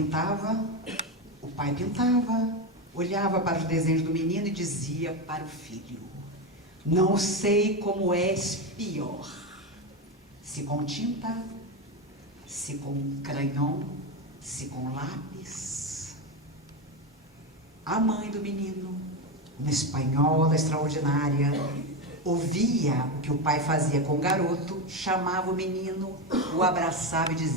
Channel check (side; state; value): both; normal; correlation 0.14